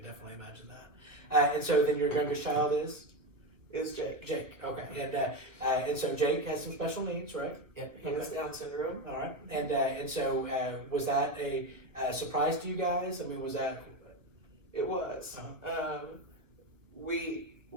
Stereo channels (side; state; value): left; late; 1.1 ms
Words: definitely imagine that. And so then your youngest child is Jake. Jake. Okay. And so Jake has some special needs, right? Yeah. He has Down syndrome. All right. And so was that a surprise to you guys? I mean, was that? It was. We